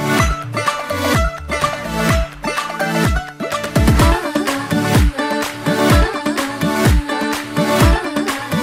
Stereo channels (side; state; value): both; identical; correlation 1.00